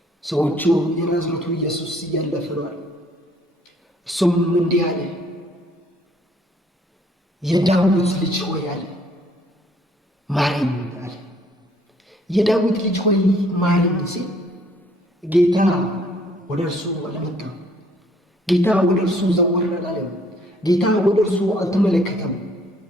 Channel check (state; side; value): normal; both; correlation 0.62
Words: ሰዎቹ የናዝሬቱ ኢየሱስ እያለፈ ነው አሉ። እሱም እንዲህ አለ፣ የዳዊት ልጅ ሆይ አለ ማረኝ አለ። የዳዊት ልጅ ሆይ ማረኝ ሲል ጌታ ወደ እርሱ አልመጣም። ጌታ ወደ እርሱ ዘወር አላለም። ጌታ ወደ እርሱ አልተመለከተም፣